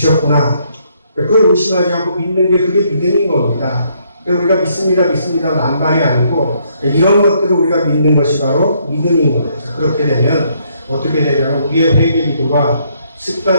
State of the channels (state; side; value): inverted; both; correlation -0.70